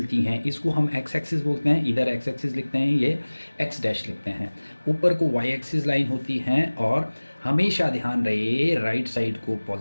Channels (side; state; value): both; inverted; correlation -1.00